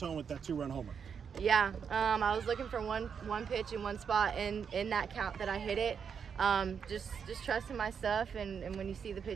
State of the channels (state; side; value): quieter; left; 6.9 dB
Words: with that 2-run homer. Yeah, I was looking for one pitch in one spot in that count that I hit it. Just trusting my stuff, and when you see the